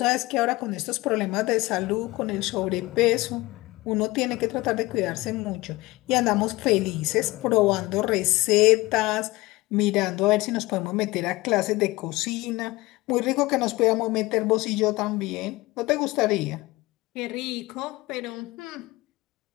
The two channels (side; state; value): right; quieter; 20.7 dB